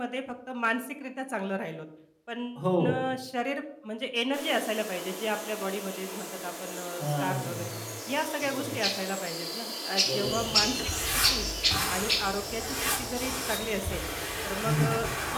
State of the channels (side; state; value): both; identical; correlation 1.00